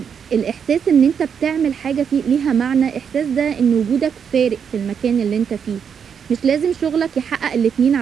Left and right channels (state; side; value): quieter; left; 7.3 dB